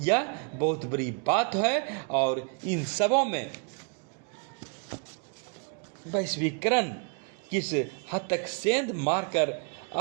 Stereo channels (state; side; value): quieter; left; 39.4 dB